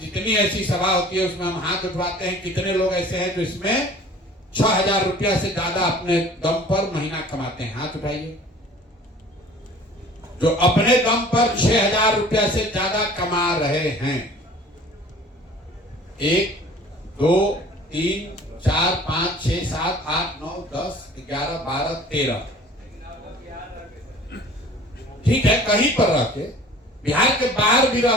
जितनी ऐसी सभा होती है उसमें हम हाथ उठवाते हैं। कितने लोग ऐसे हैं जो इसमें 6,000 रुपया से ज्यादा अपने दम पर महीना कमाते हैं? हाथ उठाइए। जो अपने दम पर 6,000 रुपया से ज्यादा कमा रहे हैं, 1 2 3 4 5 6 7 8 9 10 11 12 13, ठीक है, कहीं पर रह के, बिहार के बाहर भी रह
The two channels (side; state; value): both; normal; correlation 0.47